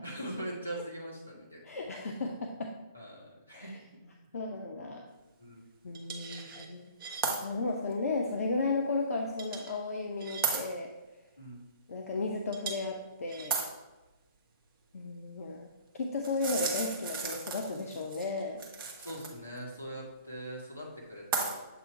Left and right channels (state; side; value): inverted; both; correlation -0.46